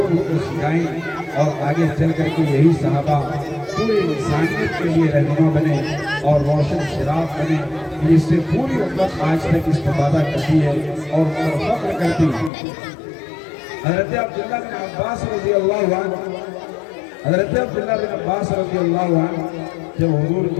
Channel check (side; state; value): right; drops out; at 12.5 s